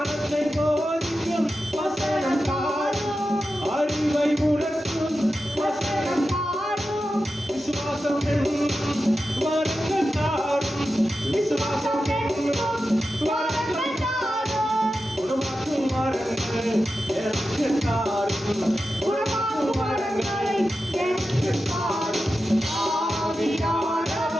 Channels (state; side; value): normal; both; correlation 0.91